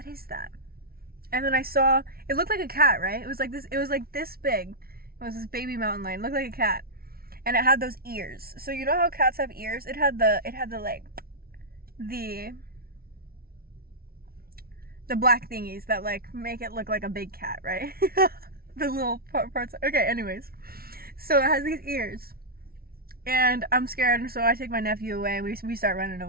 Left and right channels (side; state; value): left; late; 0.44 ms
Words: is that? And then I saw, it looked like a cat, right? It was like this big. It was this baby mountain lion. It looked like a cat. And it had those ears. So you know how cats have ears? It had the like, the black thingies that like make it look like a big cat, right? The little parts. Okay, anyways. So it has these ears. And I'm scared, and so I take my nephew away, and we start running